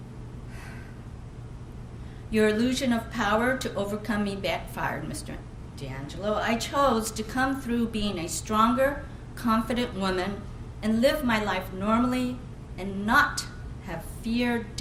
Your illusion of power to overcome me backfired, Mr. DeAngelo. I chose to come through being a stronger, confident woman and live my life normally and not have fear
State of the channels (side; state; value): both; identical; correlation 1.00